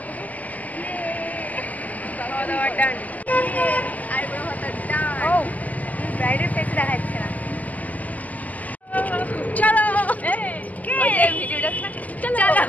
दो। ये दावा डन আর বড় হতা ডান। ও ব্রাইডের ফেস দেখাচ্ছে না। চলো কে ভিডিওটা চলো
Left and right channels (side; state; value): right; late; 0.078 ms